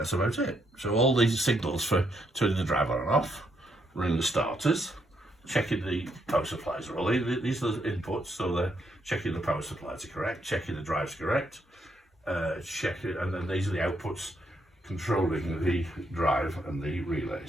about it. So all these signals for turning the drive on and off, running the starters, checking the power supplies are all in. These are the inputs, so they're checking the power supplies are correct, checking the drive's correct, checking, and then these are the outputs controlling the drive and the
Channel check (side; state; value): both; normal; correlation 0.76